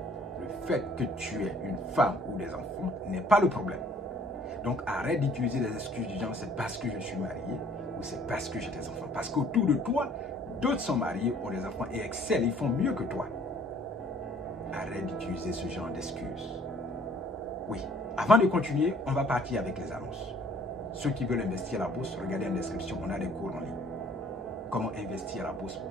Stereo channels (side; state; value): both; normal; correlation 0.57